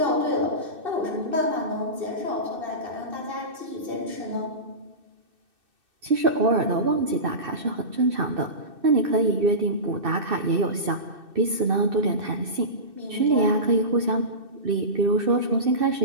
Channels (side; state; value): left; late; 2.6 ms